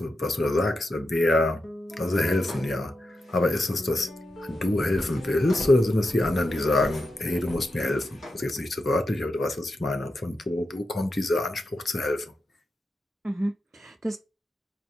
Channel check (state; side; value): normal; both; correlation 0.88